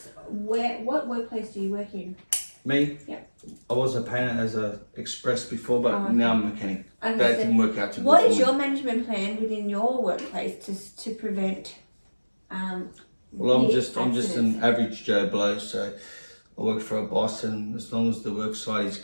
what workplace do you work in? Me? Yep. I was a painter as a express before, but Oh, okay. now I'm a mechanic. That Understood. didn't work out too good What for is me. your management plan within your workplace to prevent Well, I'm the just an accidents? average Joe Blow, so I work for a boss, and as long as the work site is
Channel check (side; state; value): both; inverted; correlation -1.00